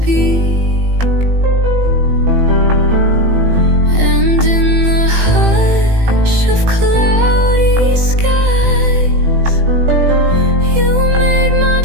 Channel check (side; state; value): left; late; 18 ms